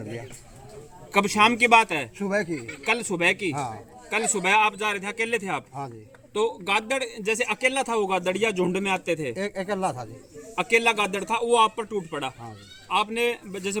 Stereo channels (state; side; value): identical; both; correlation 1.00